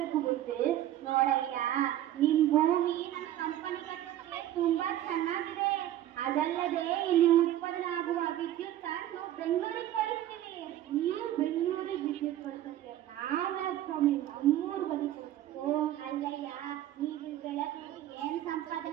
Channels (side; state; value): left; quieter; 12.8 dB